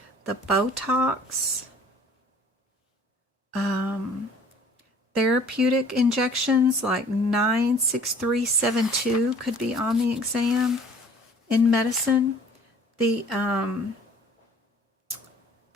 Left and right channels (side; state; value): both; normal; correlation 0.52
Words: the Botox, therapeutic injections like 96372 could be on the exam in medicine. The